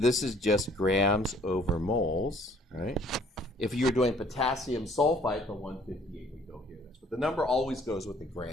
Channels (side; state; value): both; normal; correlation 0.58